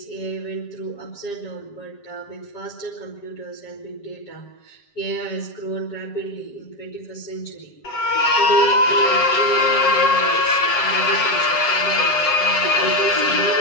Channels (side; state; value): right; late; 7.4 ms